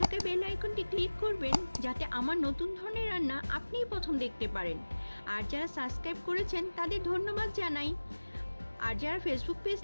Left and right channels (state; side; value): inverted; both; correlation -1.00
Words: থাকা বেল আইকনটি ক্লিক করবেন, যাতে আমার নতুন ধরনের রান্না আপনিই প্রথম দেখতে পারেন। আর যারা সাবস্ক্রাইব করেছেন তাদের ধন্যবাদ জানাই। আর যারা ফেসবুক পেজ